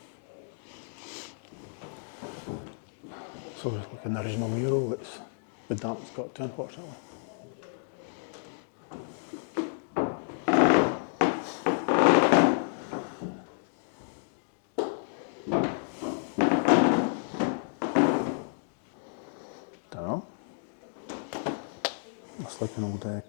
So it's like an original mural that's the damp's got to, unfortunately. Dunno. Looks like an old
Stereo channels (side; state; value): right; silent; digital silence